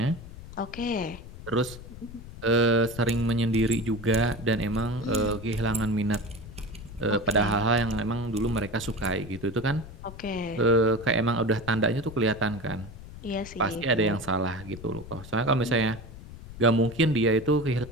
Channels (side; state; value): left; noise; rumble, 14 dB below the sound